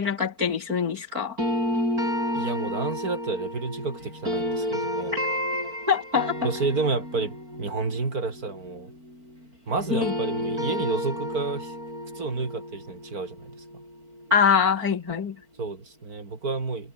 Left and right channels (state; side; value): late; left; 4.4 ms